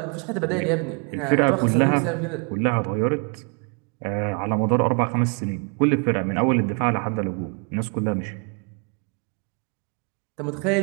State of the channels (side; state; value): left; quieter; 36.1 dB